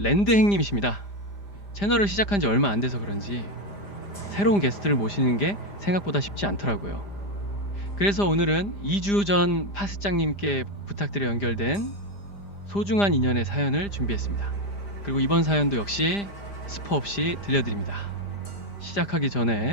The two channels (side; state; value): right; late; 5.0 ms